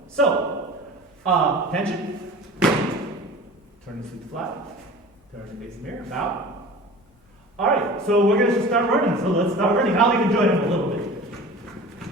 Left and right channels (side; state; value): both; normal; correlation 0.39